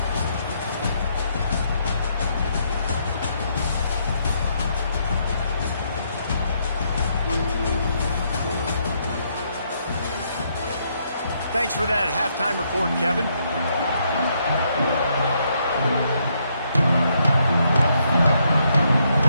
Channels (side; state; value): both; inverted; correlation -0.74